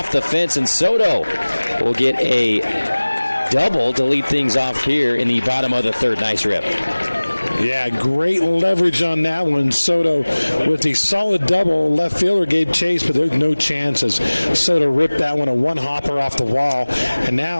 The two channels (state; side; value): inverted; both; correlation -1.00